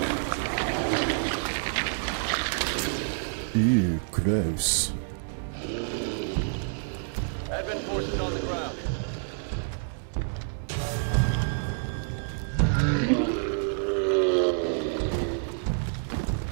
Ew, gross. Advent forces on the ground.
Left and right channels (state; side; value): silent; left; 59 dB below the other